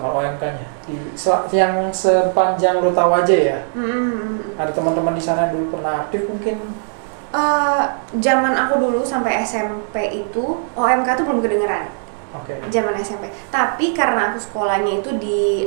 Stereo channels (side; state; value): left; silent; digital silence